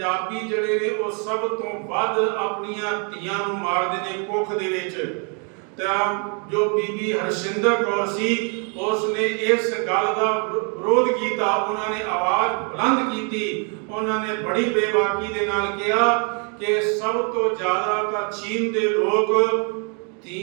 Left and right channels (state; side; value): quieter; left; 37.8 dB